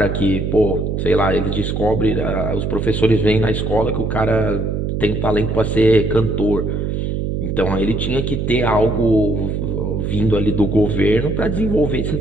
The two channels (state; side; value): noise; right; hum, 1 dB below the sound